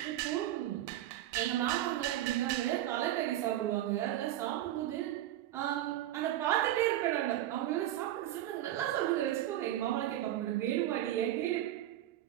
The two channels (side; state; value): left; quieter; 13.4 dB